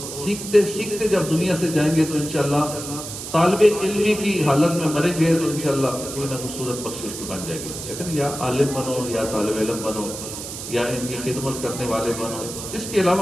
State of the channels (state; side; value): noise; right; hiss, 9 dB below the sound